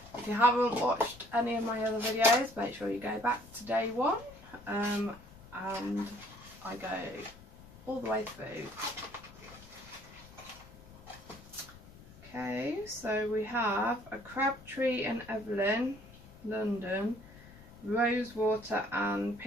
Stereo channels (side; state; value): left; noise; rumble, 20 dB below the sound